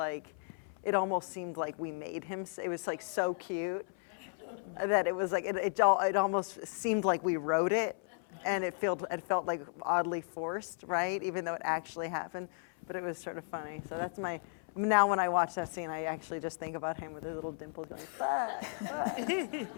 it almost seemed like we made him. It was so cute that it was it almost seemed like we wrote it. And it felt oddly forced, right? Even though it actually happened, but it was sort of funny. So that's now when I watch that scene, I actually just think about him with his little dimples going, fuck, fuck.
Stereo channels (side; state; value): right; silent; 55 dB below the other